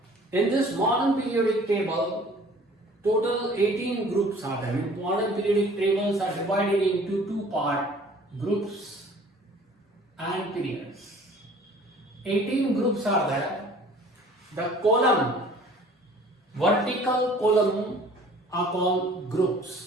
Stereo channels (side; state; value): both; normal; correlation 0.51